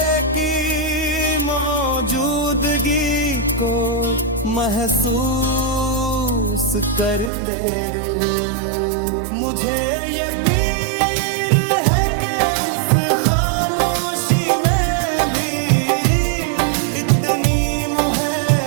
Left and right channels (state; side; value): drops out; left; at 7.3 s